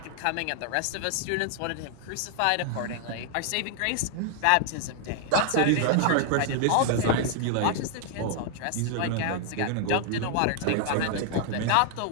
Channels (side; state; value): both; different; correlation 0.00